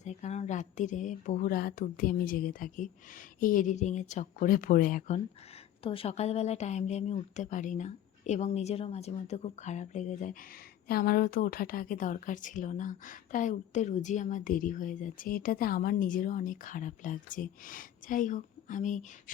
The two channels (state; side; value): quieter; right; 11.6 dB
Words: যায়, কারণ রাত্রিরে বহু রাত অবধি আমি জেগে থাকি এই এডিটিংয়ের চক্করে পড়ে এখন। তো সকালবেলা টাইমলি আমি উঠতে পারি না এবং নিজেরও মাঝে মধ্যে খুব খারাপ লেগে যায় যে আমারও তো ওঠাটা আগে দরকার ছিল না, তাই উঠতে রোজই আমার দেরি হয়ে যাচ্ছে। এটাতে আমার নিজেরও অনেক খারাপ লাগছে। যাই হোক, আমি